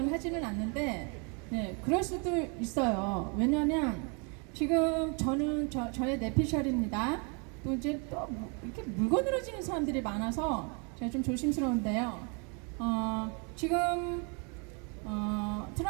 하지는 않는데, 네, 그럴 수도 있어요. 왜냐하면 지금 저는 저의 내피셜입니다. 또 이제 또 이렇게 물건으로 지는 사람들이 많아서 제가 좀 조심스러운데요. 지금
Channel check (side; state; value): left; quieter; 35.2 dB